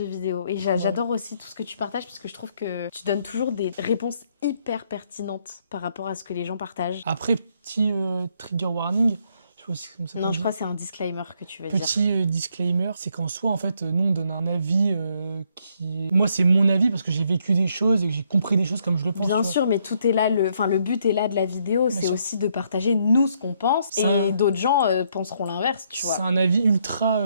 vidéo. Et j'adore aussi tout ce que tu partages parce que je trouve que tu donnes toujours des réponses hyper pertinentes par rapport à ce que les gens partagent. Après, petit trigger warning. Comme ça Non, je crois que c'est un disclaimer que tu veux dire. Petit disclaimer, c'est qu'en soi, en fait, nous, on donne un avis qui... Moi, c'est mon avis parce que j'ai vécu des choses et que j'ai compris des choses comme je le pense. Bien sûr, mais tout est là, le but est là de la vidéo, c'est aussi de partager nous ce qu'on pense et d'autres gens penseront l'inverse, tu vois. C'est un avis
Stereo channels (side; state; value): both; inverted; correlation -0.72